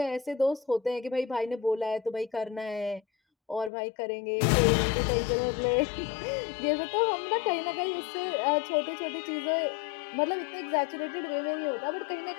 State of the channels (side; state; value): right; drops out; at 3.7 s